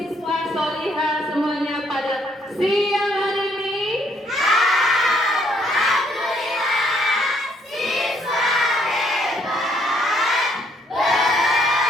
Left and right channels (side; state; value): both; normal; correlation 0.68